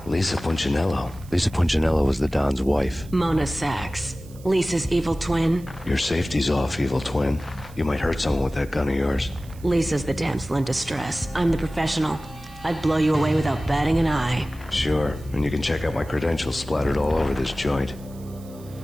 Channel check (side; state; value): right; noise; hiss, 24 dB below the sound